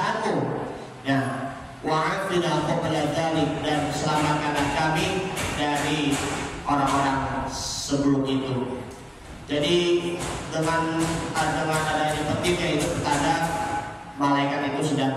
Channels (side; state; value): both; identical; correlation 1.00